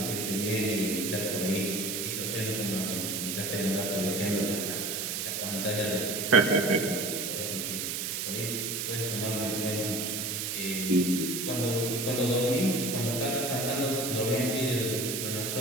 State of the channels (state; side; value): noise; right; hiss, 2 dB below the sound